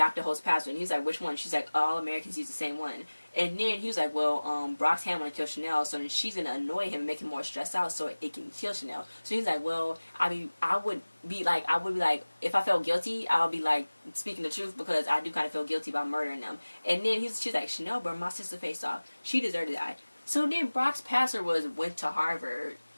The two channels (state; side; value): inverted; both; correlation -1.00